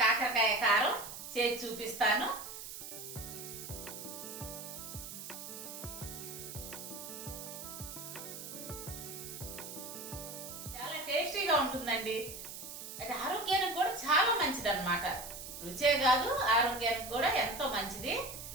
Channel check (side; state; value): right; noise; hiss, 10 dB below the sound